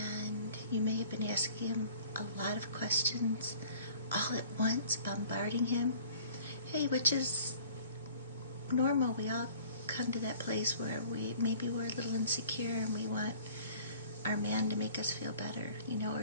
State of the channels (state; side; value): inverted; both; correlation -0.50